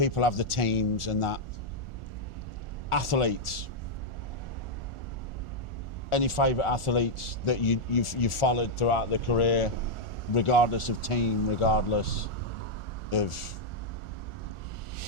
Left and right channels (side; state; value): right; late; 1.4 ms